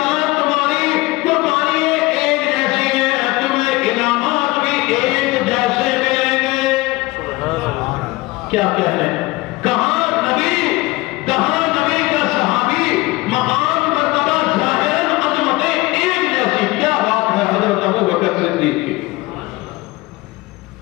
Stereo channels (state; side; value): quieter; right; 21.1 dB